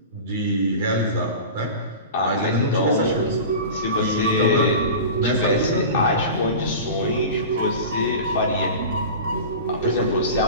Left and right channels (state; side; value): inverted; both; correlation -0.33